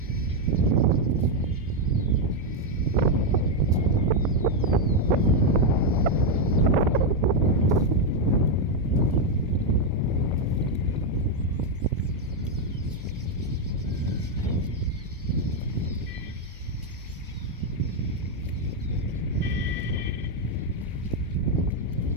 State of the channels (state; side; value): normal; both; correlation 0.02